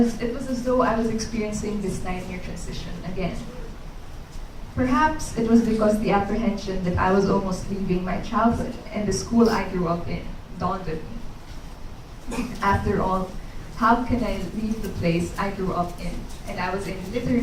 it was as though I was experiencing this 9-year transition again. Perhaps it was because the apprehension that I was almost leaving my childhood and the school I grew up in dawned on me. After all, how can I leave the place I grew up in and I was in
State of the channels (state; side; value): identical; both; correlation 1.00